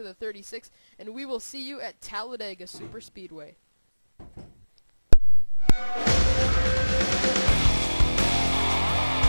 the 36, and we will see you at Talladega Superspeedway.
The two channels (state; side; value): inverted; both; correlation -1.00